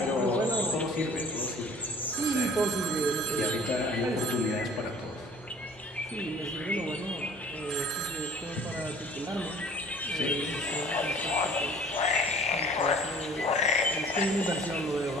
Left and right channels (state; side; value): normal; both; correlation 0.50